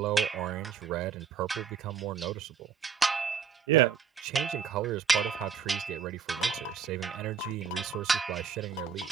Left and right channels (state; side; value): quieter; left; 6.5 dB